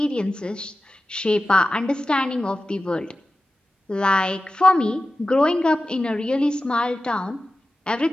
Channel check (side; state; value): both; normal; correlation 0.94